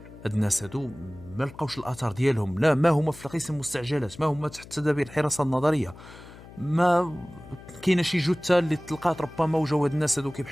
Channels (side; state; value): left; noise; hum, 18 dB below the sound